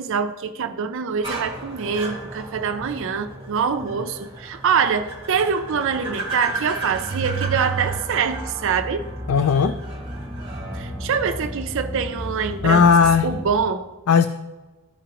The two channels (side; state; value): both; normal; correlation 0.09